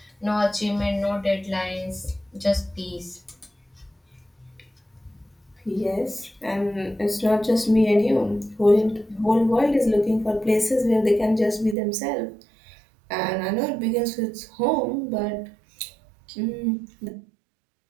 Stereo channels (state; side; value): drops out; left; at 11.8 s